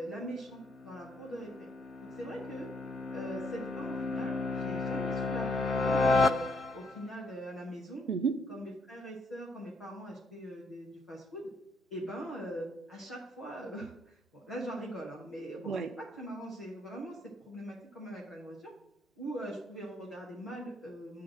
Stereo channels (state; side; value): normal; both; correlation 0.70